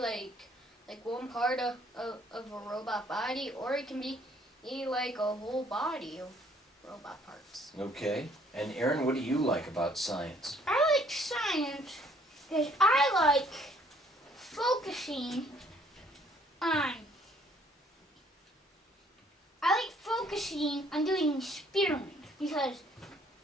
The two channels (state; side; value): normal; both; correlation 0.62